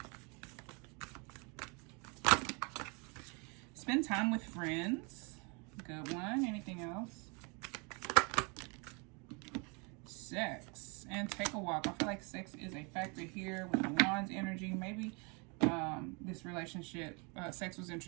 Spend time with friends. Good one. Anything else? Sex. And take a walk. I feel like sex is a factor here with the Wands energy. Maybe this relationship, sex was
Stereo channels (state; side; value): quieter; left; 32.0 dB